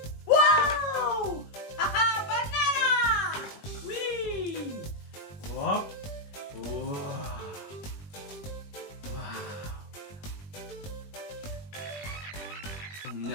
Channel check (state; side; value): late; right; 20 ms